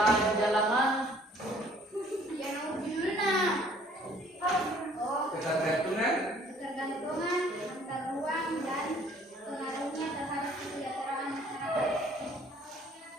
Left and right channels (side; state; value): both; normal; correlation 0.57